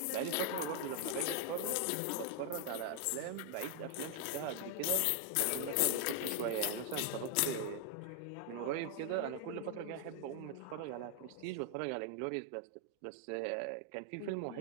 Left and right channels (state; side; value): different; both; correlation 0.00